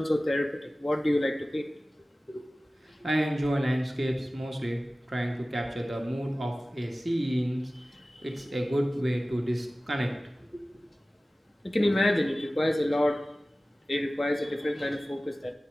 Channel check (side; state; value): both; normal; correlation 0.97